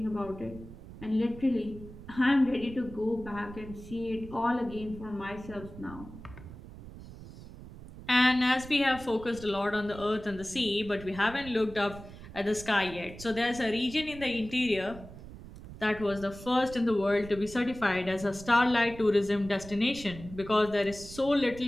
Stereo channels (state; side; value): noise; right; rumble, 15 dB below the sound